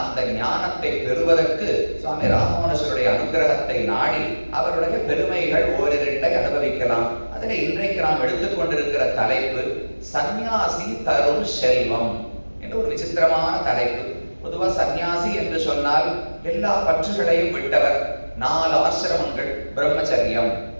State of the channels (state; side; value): inverted; both; correlation -1.00